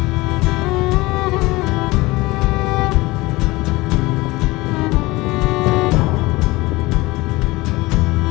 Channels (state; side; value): quieter; right; 21.2 dB